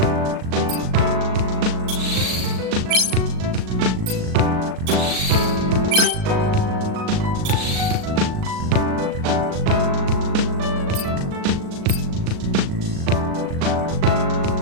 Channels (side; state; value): left; late; 38 ms